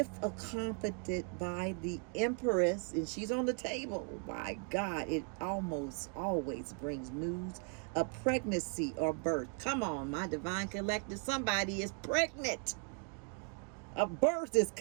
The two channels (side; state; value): left; quieter; 38.2 dB